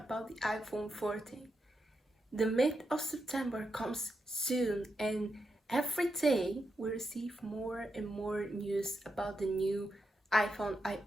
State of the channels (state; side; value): normal; both; correlation 0.85